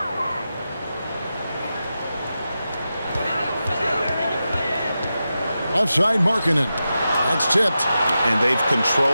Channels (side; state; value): both; inverted; correlation -0.91